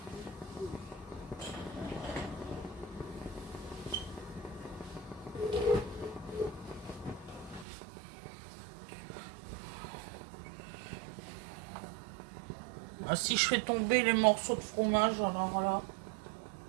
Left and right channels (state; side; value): drops out; left; at 7.7 s